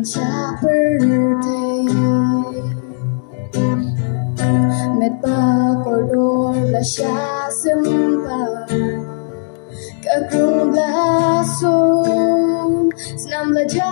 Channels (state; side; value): silent; right; digital silence